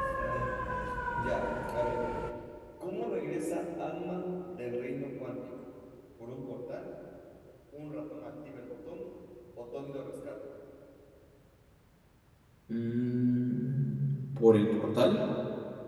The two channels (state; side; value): identical; both; correlation 1.00